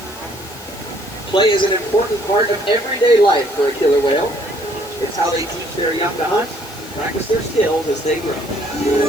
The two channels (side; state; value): left; noise; hiss, 19 dB below the sound